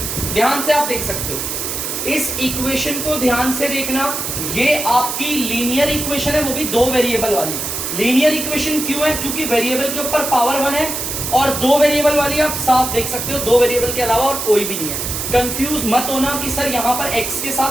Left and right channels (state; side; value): noise; right; hiss, 4 dB below the sound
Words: ध्यान से आप देख सकते हो इस इक्वेशन को, ध्यान से देखना। ये आपकी लीनियर इक्वेशन है, वो भी दो वेरिएबल वाली। लीनियर इक्वेशन क्यों है? क्योंकि वेरिएबल के ऊपर पावर 1 है और दो वेरिएबल वाली आप साफ देख सकते हो, दो वेरिएबल के अलावा और कोई भी नहीं है। कंफ्यूज मत होना कि सर यहाँ पर x के